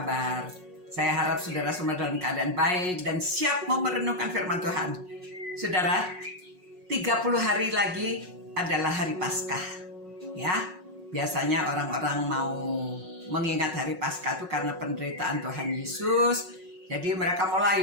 Saya harap saudara semua dalam keadaan baik dan siap mau merenungkan firman Tuhan. Saudara, 30 hari lagi adalah hari Paskah. Ya, biasanya orang-orang mau mengingat hari Paskah itu karena penderitaan Tuhan Yesus. Jadi mereka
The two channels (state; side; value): late; left; 5.4 ms